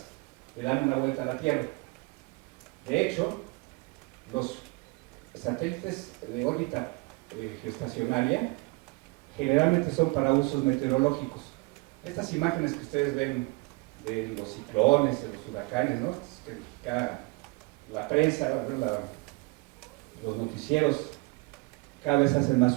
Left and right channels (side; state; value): left; quieter; 26.5 dB